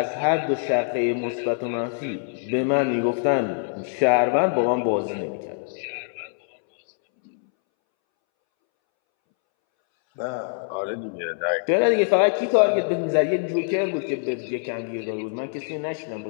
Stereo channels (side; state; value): right; silent; 62 dB below the other